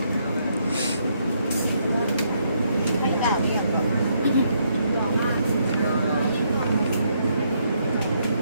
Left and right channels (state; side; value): inverted; both; correlation -0.74